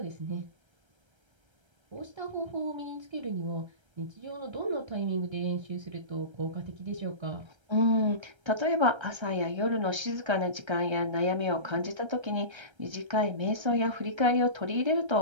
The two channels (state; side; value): late; left; 1.3 ms